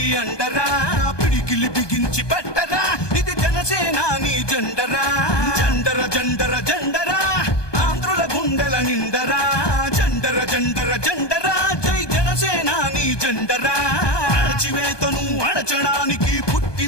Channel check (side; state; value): right; late; 1.2 ms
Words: అండరా పిడికిలి బిగించి పట్టరా ఇది జనసేనాని జెండరా జండర జండర జండరా ఆంధ్రుల గుండెల నిండరా జండర జండర జండరా జై జనసేనాని జెండరా అణచివేతను అణచడానికి